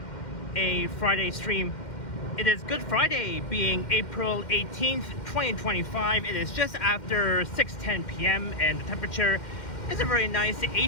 a Friday stream. It is Good Friday, being April 18th 2025. It is just after 6:10 p.m. and the temperature is a very nice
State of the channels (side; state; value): right; late; 2.1 ms